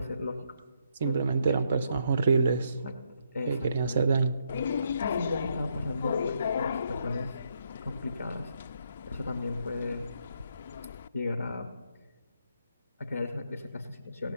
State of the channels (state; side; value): inverted; both; correlation -0.76